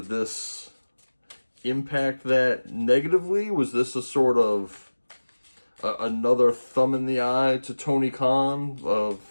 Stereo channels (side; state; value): both; inverted; correlation -1.00